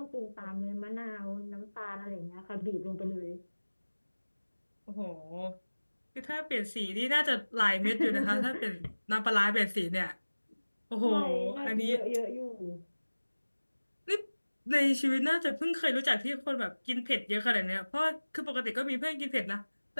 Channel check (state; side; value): inverted; both; correlation -1.00